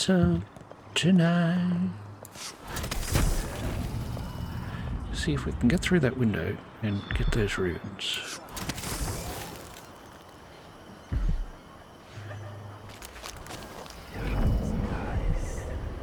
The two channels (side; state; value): both; identical; correlation 1.00